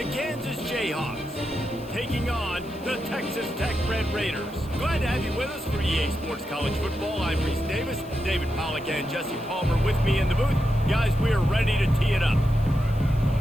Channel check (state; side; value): noise; left; hiss, 24 dB below the sound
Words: Kansas Jayhawks taking on the Texas Tech Red Raiders. Glad to have you with us for EA Sports College Football. I'm Reese Davis, David Pollack and Jesse Palmer with me in the booth. Guys, we are ready to tee it up.